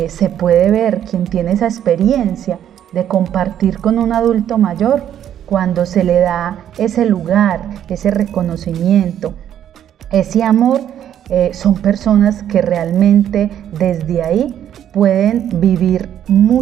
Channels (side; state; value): left; quieter; 10.3 dB